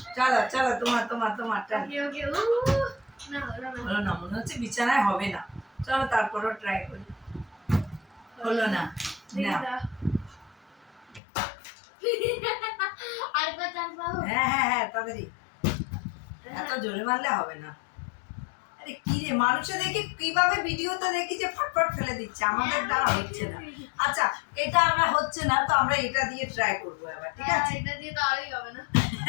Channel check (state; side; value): drops out; right; at 11.2 s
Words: চলো চলো তোমার তোমার তোমার টান। ওকে ওকে না হলো না হলো না, মনে হচ্ছে বিছানায় হবে না। চলো তারপরও ট্রাই করি। হলো না, না আর কত চান্স পাবো হ্যাঁ হ্যাঁ হ্যাঁ তাড়াতাড়ি, এত জোরে মারলে হবে না। আরে কি রে, মানুষে দেখি কিভাবে ভিডিওতে দেখি যে ফটফট ফেলে দিচ্ছে, আমাদের দ্বারা হচ্ছে না। আচ্ছা এটা আমরা হচ্ছে না, তো আমরা এটা দিয়ে ট্রাই করবো এবার, ঠিক আছে? এটা দিয়ে তো আরই হবে না